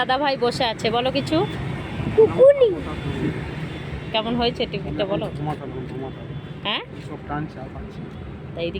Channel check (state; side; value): identical; both; correlation 1.00